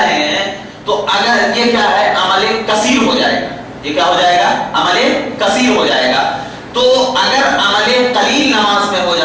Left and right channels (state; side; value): identical; both; correlation 1.00